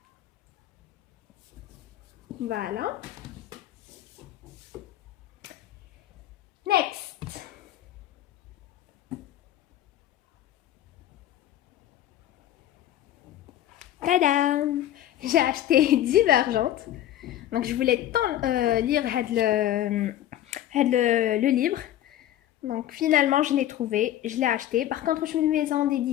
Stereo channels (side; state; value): right; quieter; 12.4 dB